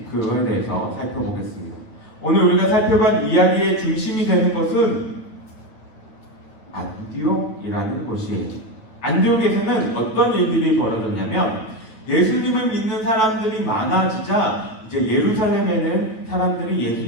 그거에 대해서 살펴보겠습니다. 오늘 우리가 살펴본 이야기의 중심이 되는 것은 안디옥이라는 곳이에요. 안디옥에서는 어떤 일들이 벌어졌냐면 예수님을 믿는 사람들이 많아지자 이제 예루살렘에는 사람들이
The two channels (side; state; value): right; late; 9.2 ms